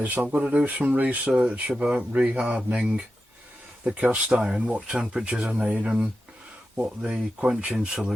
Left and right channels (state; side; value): normal; both; correlation 0.91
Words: I've got to do some research about rehardening the cast iron, what temperatures I need and what the quenching